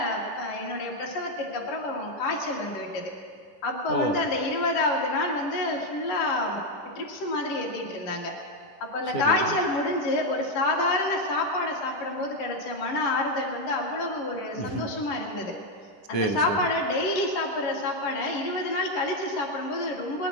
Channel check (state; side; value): late; right; 11 ms